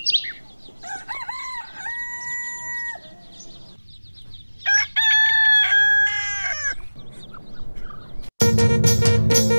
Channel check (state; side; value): inverted; both; correlation -1.00